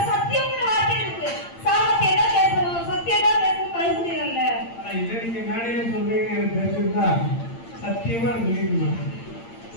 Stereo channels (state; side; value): late; right; 8.8 ms